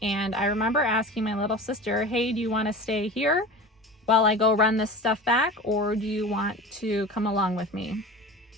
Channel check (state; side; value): normal; both; correlation 0.34